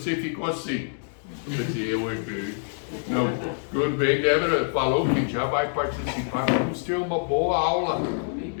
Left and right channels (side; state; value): right; silent; digital silence